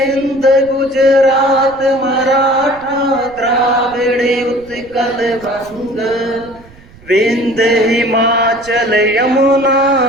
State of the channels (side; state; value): right; noise; rumble, 24 dB below the sound